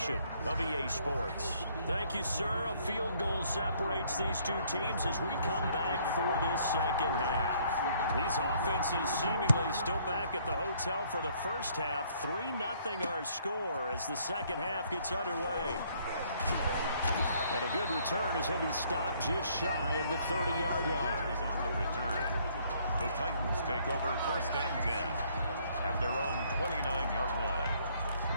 of EA Sports. Thank you, sir. A field goal separates these two teams as we come back for this second half. These offenses seemingly still back at the hotel for the first half. 3-0 our score as the second half gets underway. And a good return as he'll be stopped just shy of the 30-yard line. On the return. The Titans take over 1st and 10 at their own 29-yard line.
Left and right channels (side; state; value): both; inverted; correlation -0.64